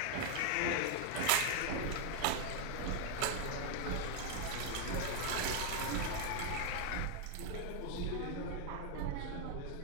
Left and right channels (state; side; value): different; both; correlation 0.00